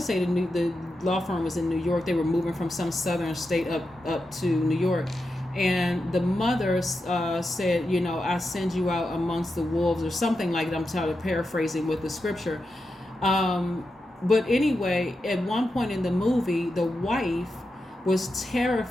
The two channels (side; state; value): both; normal; correlation 0.88